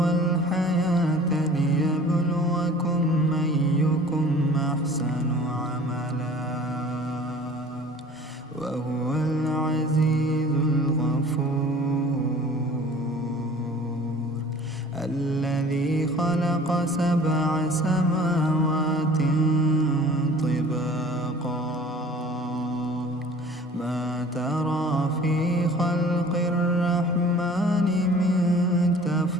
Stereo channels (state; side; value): normal; both; correlation 0.47